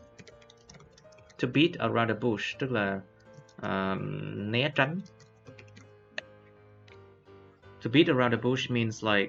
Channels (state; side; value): identical; both; correlation 1.00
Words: To beat around the bush tức là né tránh. To beat around the bush means